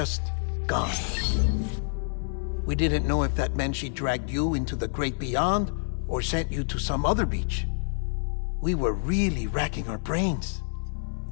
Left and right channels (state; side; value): silent; right; 60 dB below the other